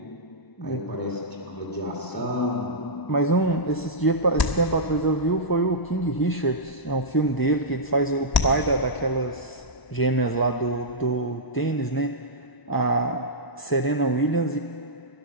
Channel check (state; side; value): late; right; 1.0 ms